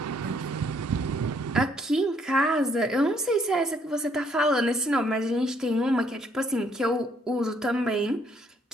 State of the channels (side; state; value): both; normal; correlation 0.67